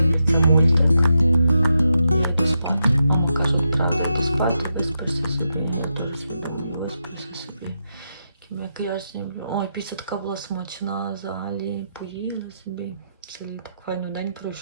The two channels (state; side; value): inverted; both; correlation -0.85